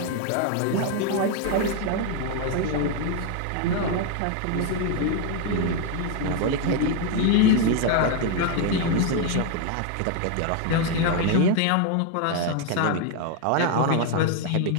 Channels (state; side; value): different; both; correlation 0.01